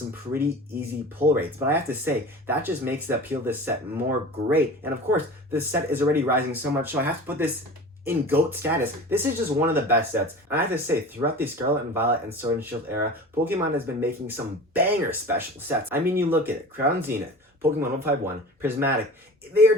pretty easy pull rates, but I have to say, that just makes the appeal of this set more great. And of course, this set is already rising so much, so I have to put this in GOAT status. This is just one of the best sets. And I have to say, throughout the Scarlet and Violet and Sword and Shield era, Pokemon has been making some banger special sets. I mean, you look at it, Crown Zenith, Pokemon 151, Prismatic, they are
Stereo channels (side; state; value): both; normal; correlation 0.37